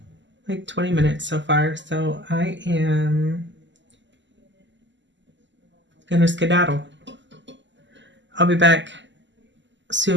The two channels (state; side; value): late; left; 0.54 ms